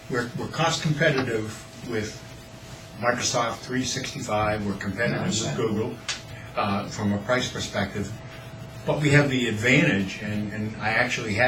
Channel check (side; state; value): both; identical; correlation 1.00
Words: We're cost competitive with Microsoft 365. We're competitive with Google from a price perspective. But we have the advantage, and I actually